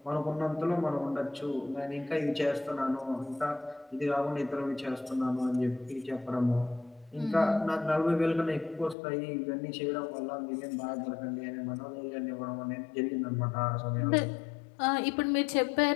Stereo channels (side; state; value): right; drops out; at 9.0 s